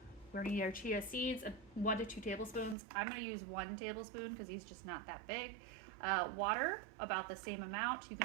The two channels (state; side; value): drops out; left; at 2.8 s